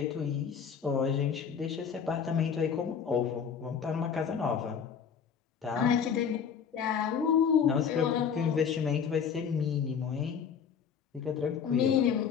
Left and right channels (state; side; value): quieter; right; 7.1 dB